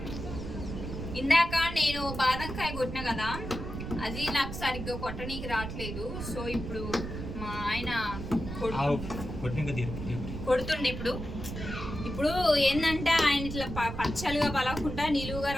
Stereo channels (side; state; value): right; noise; rumble, 7 dB below the sound